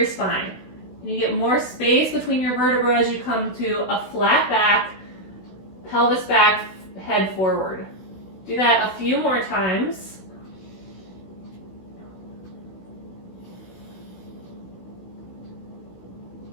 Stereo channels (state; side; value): late; right; 16 ms